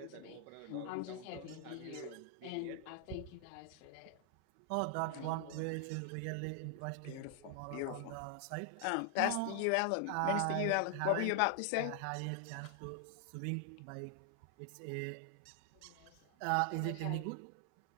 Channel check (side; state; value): both; different; correlation 0.00